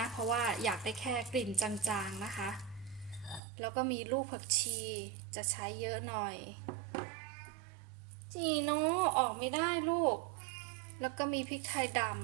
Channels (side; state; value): left; drops out; at 3.4 s